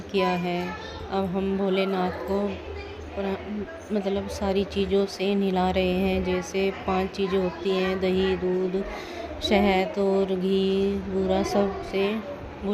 किया है। अब हम भोलेनाथ को मतलब सारी चीज़ों से नहला रहे हैं। जैसे 5 चीज़ें होती हैं, दही, दूध, शहद और घी, बूरा, सब से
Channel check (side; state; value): both; identical; correlation 1.00